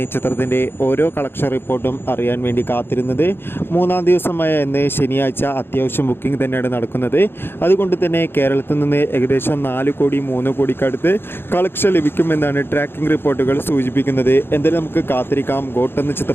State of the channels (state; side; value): late; right; 0.11 ms